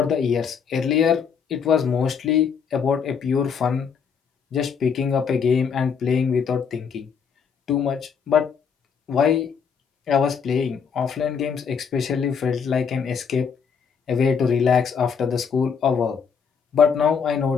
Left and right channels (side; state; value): right; quieter; 6.5 dB